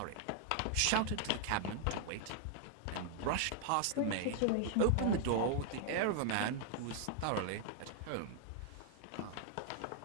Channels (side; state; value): both; different; correlation 0.00